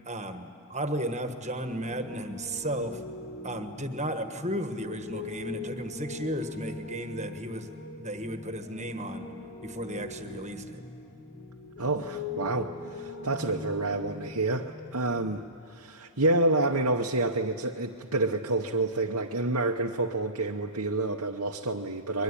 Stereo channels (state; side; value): normal; both; correlation -0.14